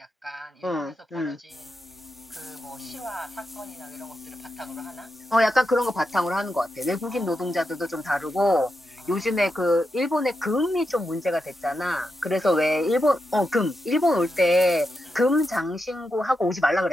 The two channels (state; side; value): normal; both; correlation 0.86